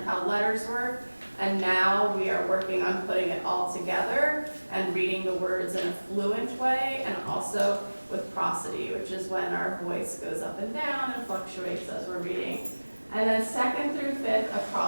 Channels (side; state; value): both; inverted; correlation -1.00